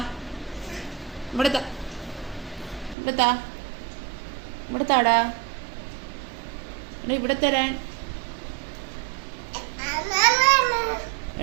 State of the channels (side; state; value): left; drops out; at 3.0 s